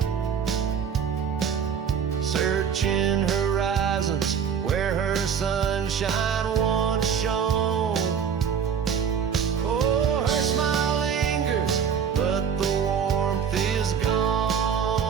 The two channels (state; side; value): quieter; left; 7.3 dB